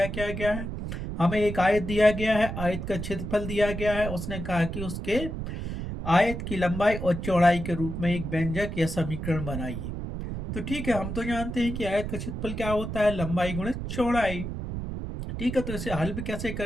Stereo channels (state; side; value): noise; right; rumble, 5 dB below the sound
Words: क्या गया है, हमें एक आयत दिया गया है, आयत का क्षेत्रफल दिया गया है। उसने कहा कि उसके आयत की लंबाई और चौड़ाई के रूप में एक व्यंजक या समीकरण बनाइए। तो ठीक है, हम तो जानते हैं कि आयत का क्षेत्रफल क्या होता है, लंबाई गुणित चौड़ाई। ठीक है, तो इसे हल भी कैसे